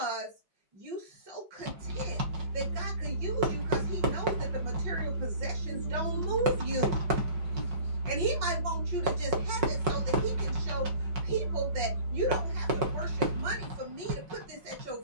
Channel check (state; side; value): late; left; 5.4 ms